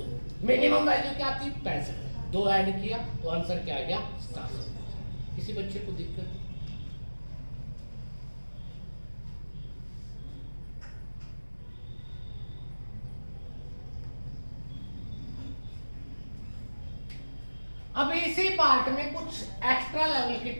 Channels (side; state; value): both; inverted; correlation -1.00